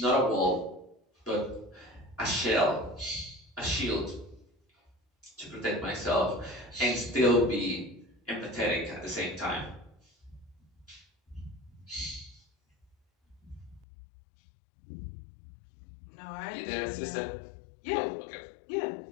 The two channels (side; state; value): right; drops out; at 13.9 s